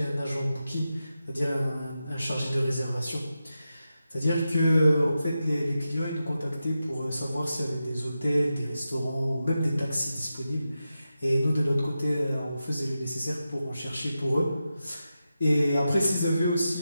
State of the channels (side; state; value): both; inverted; correlation -0.90